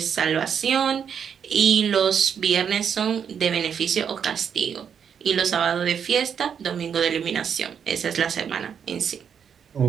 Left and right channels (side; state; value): left; quieter; 7.6 dB